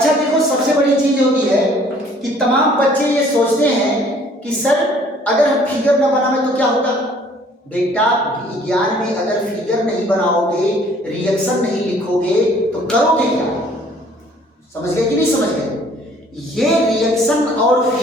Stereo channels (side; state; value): both; normal; correlation 0.57